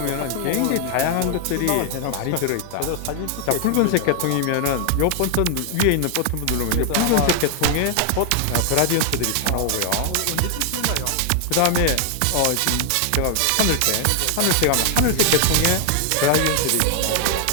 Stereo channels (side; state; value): both; different; correlation 0.00